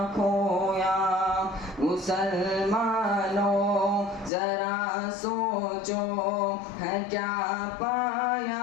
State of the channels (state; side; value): drops out; right; at 4.3 s